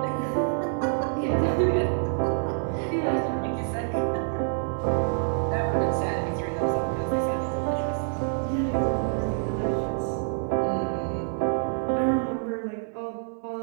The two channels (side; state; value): left; silent; digital silence